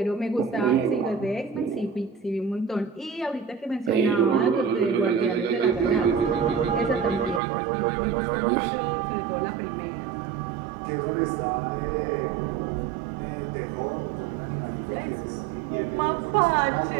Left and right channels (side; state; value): left; drops out; at 7.4 s